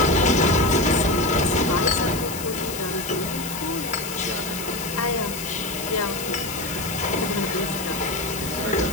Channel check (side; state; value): left; noise; hiss, 8 dB below the sound